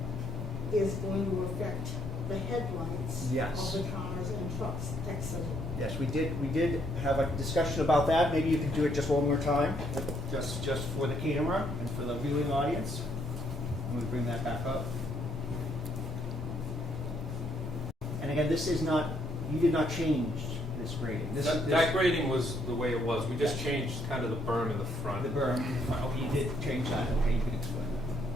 is going to affect the headlights Yes. of the cars and trucks exiting. Yes, we did have a discussion about that. Maybe you could do it just one more time, just for the camera and for the viewing audience. I'm going to bring that back up. And again, this is not, you did not change this grading. That grading was the way it was. We just changed kind of the berm in the front. The berm, oh, you did change that, okay, you can explain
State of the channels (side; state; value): both; normal; correlation 0.71